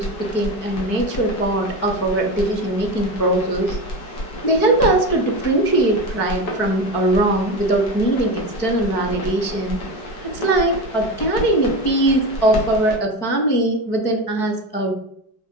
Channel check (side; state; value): right; late; 4.6 ms